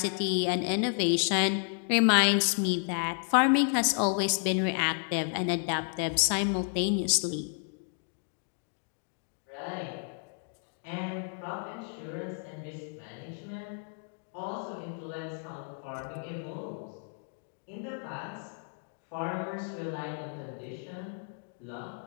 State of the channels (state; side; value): silent; right; 57 dB below the other